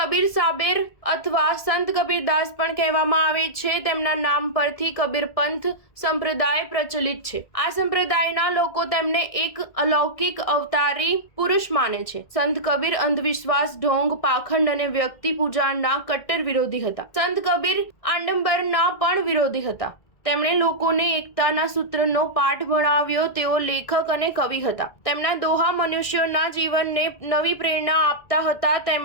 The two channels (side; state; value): right; late; 1.6 ms